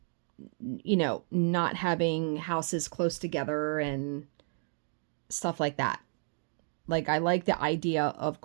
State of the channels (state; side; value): silent; left; 57 dB below the other